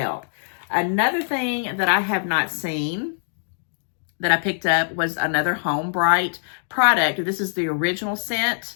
Another thing that I have not seen that I picked up was another Home Bright product. This is the original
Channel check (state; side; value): silent; right; digital silence